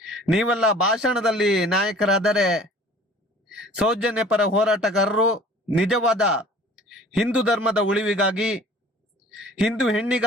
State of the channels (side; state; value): both; normal; correlation 0.48